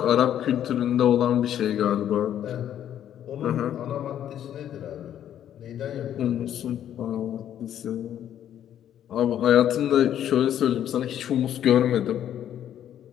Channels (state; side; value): quieter; right; 10.5 dB